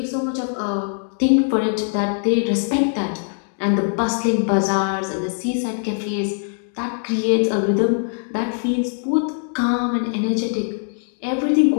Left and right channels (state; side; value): silent; right; digital silence